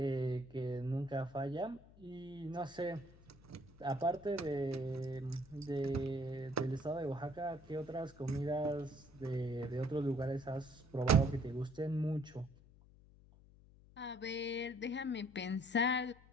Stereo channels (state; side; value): noise; left; hum, 23 dB below the sound